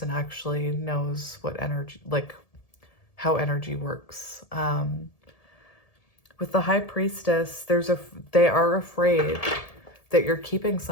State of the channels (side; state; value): right; late; 1.7 ms